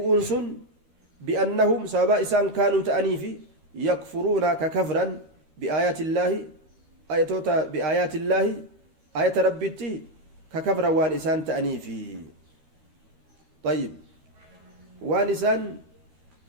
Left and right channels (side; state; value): left; late; 13 ms